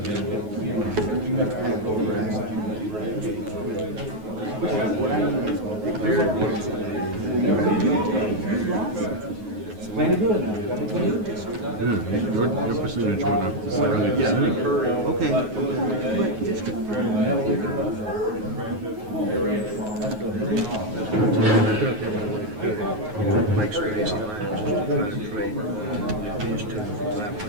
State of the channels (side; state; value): left; late; 9.4 ms